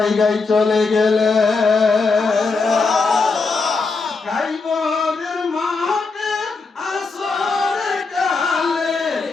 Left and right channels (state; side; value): quieter; right; 4.2 dB